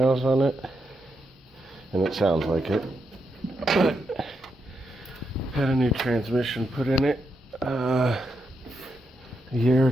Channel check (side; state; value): both; normal; correlation 0.83